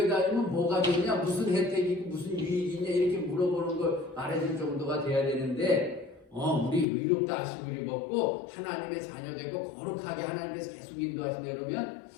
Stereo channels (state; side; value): drops out; right; at 6.9 s